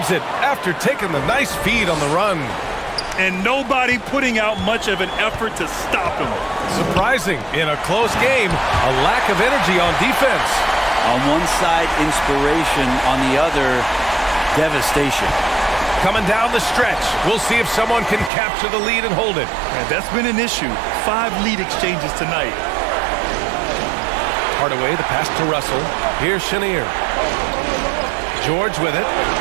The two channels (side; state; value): left; drops out; at 18.3 s